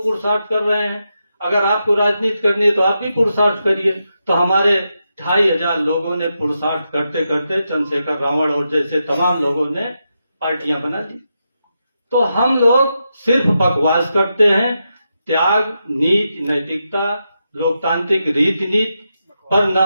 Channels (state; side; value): inverted; both; correlation -0.86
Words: कर रहे हैं। अगर आपको राजनीति करनी है तो आप भी पुरुषार्थ करिए। तो हमारे 2500 लोगों ने पुरुषार्थ करते करते चंद्रशेखर रावण और जैसे तमाम लोगों ने पार्टियां बना दी। तो हम लोग सिर्फ बकवास करते हैं। त्याग, नीति, नैतिकता, लोकतांत्रिक रीति नीति पर न